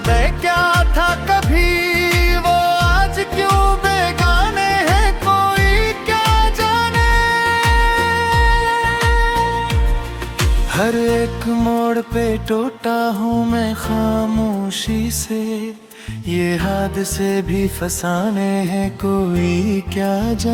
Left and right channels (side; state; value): both; identical; correlation 1.00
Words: क्या था कभी, वो आज क्यों बेगाने हैं कोई क्या जाने। हर एक मोड़ पे टूटा हूँ मैं खामोशी से, ये हादसे भी फसाने हैं कोई क्या